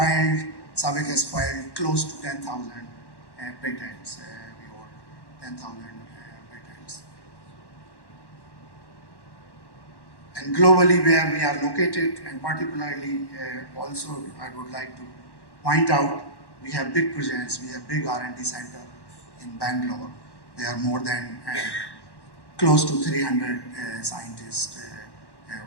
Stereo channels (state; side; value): late; right; 1.1 ms